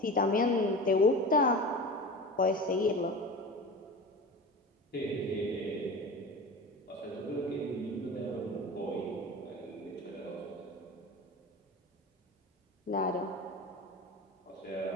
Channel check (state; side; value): normal; both; correlation 0.32